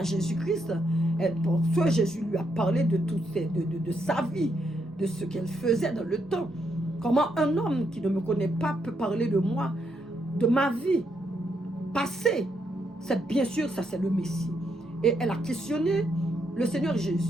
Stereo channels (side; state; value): both; normal; correlation 0.78